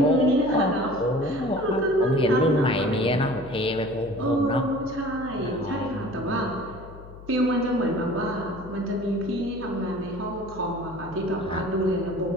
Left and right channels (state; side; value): noise; left; hum, 17 dB below the sound